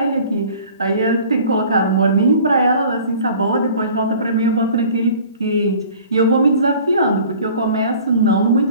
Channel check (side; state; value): both; inverted; correlation -0.47